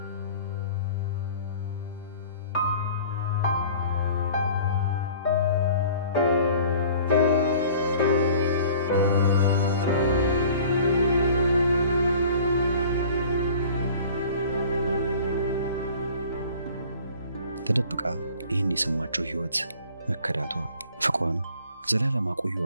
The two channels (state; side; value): inverted; both; correlation -0.47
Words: ተደብቃ ይህን የሰማችው ህይወት መከዳቷ፣ ፍቅሯን ዘላለም